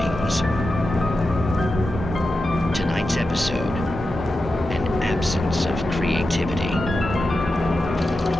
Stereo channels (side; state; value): both; normal; correlation 0.91